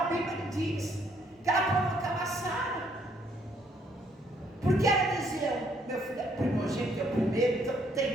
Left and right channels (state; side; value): normal; both; correlation 0.68